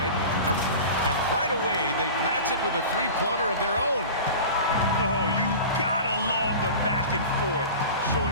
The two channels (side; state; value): both; inverted; correlation -0.35